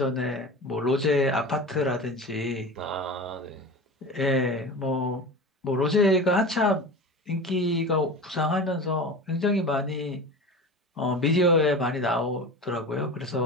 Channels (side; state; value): both; normal; correlation 0.31